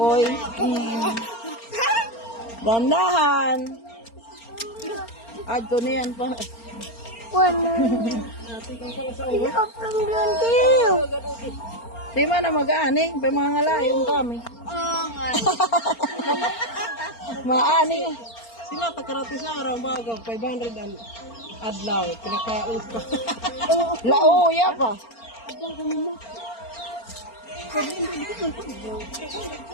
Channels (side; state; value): right; late; 4.4 ms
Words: Dandahan. Adto niyan pa. Di man na mag-ani, pa mga ngalayong kami. Maani. sila takarati sa araw bago 500 ang adlaw pinakaus pa. Lauya pa.